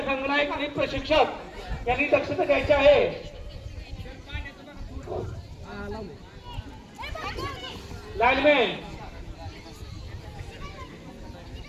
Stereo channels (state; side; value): identical; both; correlation 1.00